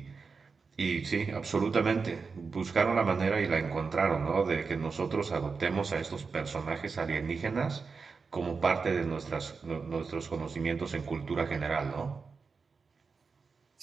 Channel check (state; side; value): quieter; left; 4.9 dB